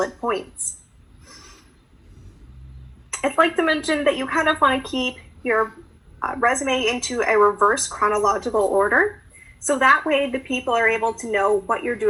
points. I'd like to mention that you kind of want to keep your resume into a reverse chronological order. So that way the people are able to know what you're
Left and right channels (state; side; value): identical; both; correlation 1.00